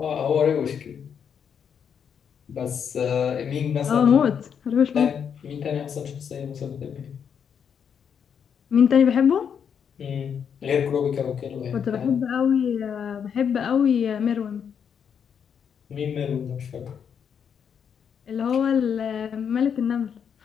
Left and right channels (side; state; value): right; quieter; 7.5 dB